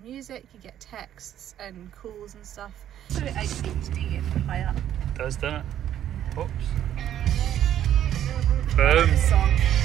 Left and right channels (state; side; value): quieter; left; 11.0 dB